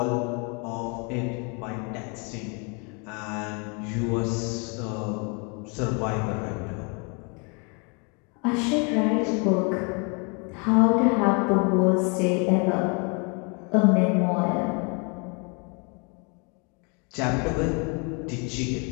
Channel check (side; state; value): right; quieter; 34.1 dB